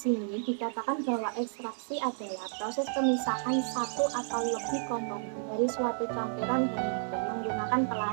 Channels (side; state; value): left; silent; digital silence